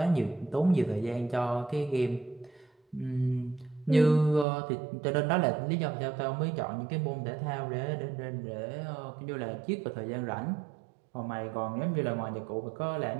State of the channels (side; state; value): left; drops out; at 4.5 s